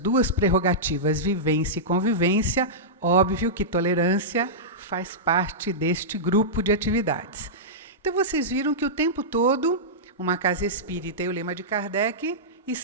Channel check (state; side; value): normal; both; correlation -0.13